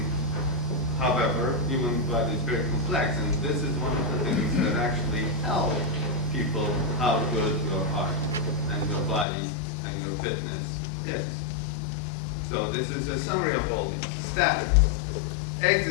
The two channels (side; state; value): right; drops out; at 9.2 s